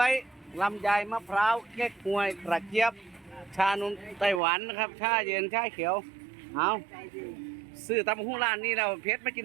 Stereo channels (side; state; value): left; drops out; at 4.4 s